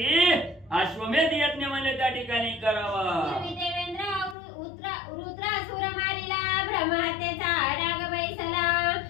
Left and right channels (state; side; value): drops out; right; at 4.4 s